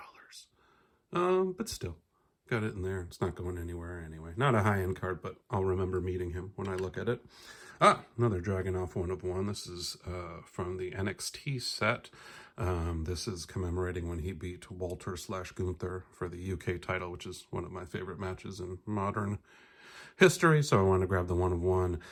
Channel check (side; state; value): both; identical; correlation 1.00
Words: But still, got it in there. It's not going anywhere anyway. Not a high-end card, but I'll remember meeting him when I look at it. Another Dragunov 1 of 1. This is from the NXT set. This is commemorating when he beat Walter/Gunther for the UK title, which is one of my favorite matches in modern history. So I want to grab the 1 of 1.